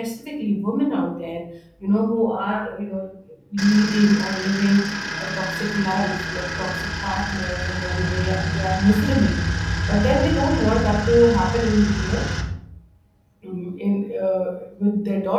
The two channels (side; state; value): both; identical; correlation 1.00